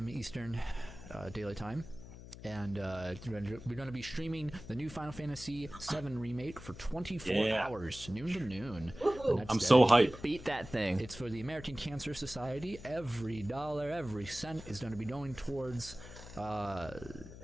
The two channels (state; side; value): noise; left; hum, 14 dB below the sound